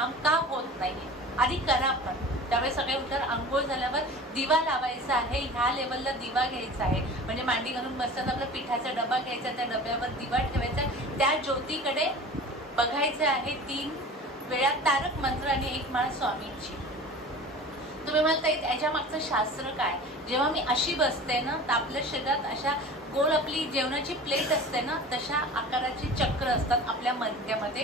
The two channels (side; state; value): both; normal; correlation 0.38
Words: का होत नाही आधी करा. पण त्यावेळेस सगळे उठल्यावर आंघोळ झाल्यावर दिवा लावायचा आहे, ह्या लेवलला दिवा घ्यायचा आहे, म्हणजे मांडी घालून बसताना आपला पिठाचा डबा घ्यायचा, त्या डब्यावर दिवा ठेवायचा, त्या ज्योतीकडे बघायचं आहे, 3 वेळा तारक मंत्र आणि 1 माळ स्वामींची. तुम्ही म्हणता याच्या मागचं शास्त्र काय, जेव्हा मी अशी बसते ना तर आपल्या शरीरात अशा गोल आपली जेवणाची प्लेट असते ना तशा आकाराची चक्र असतात, आपल्या